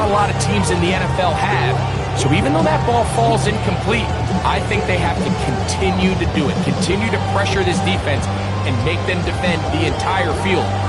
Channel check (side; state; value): both; identical; correlation 1.00